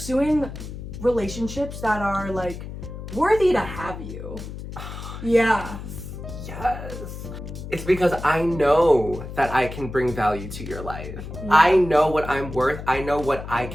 relationships that are like worthy to have you. Yeah. Yes. It's because I know that I can bring value to your life. Yeah. I know what I'm worth. I know what I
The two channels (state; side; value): noise; left; hum, 10 dB below the sound